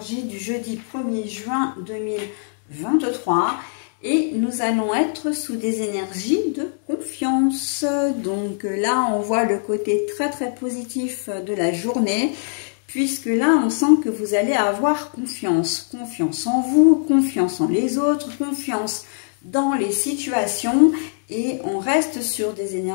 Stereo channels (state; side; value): silent; right; digital silence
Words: du jeudi 1er juin 2023 et nous allons être sous des énergies de confiance. Donc là, on voit le côté très positif de la journée puisque là, on sent que vous allez avoir confiance. Confiance en vous, confiance en les autres, confiance dans les situations. Et on reste sur des